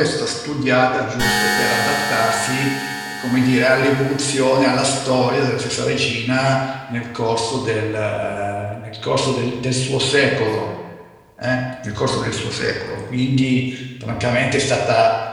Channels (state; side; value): identical; both; correlation 1.00